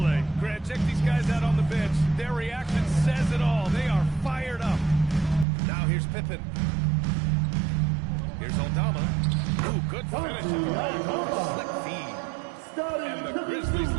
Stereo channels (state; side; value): drops out; left; at 5.5 s